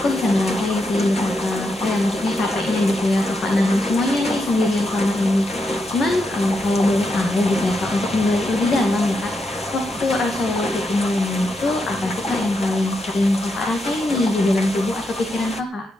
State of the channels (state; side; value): normal; both; correlation 0.83